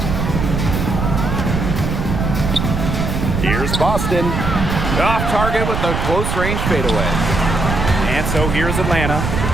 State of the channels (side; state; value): right; noise; rumble, 2 dB below the sound